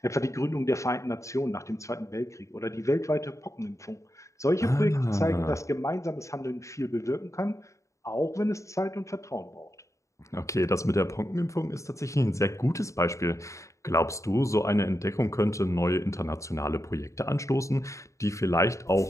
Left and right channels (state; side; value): late; right; 0.15 ms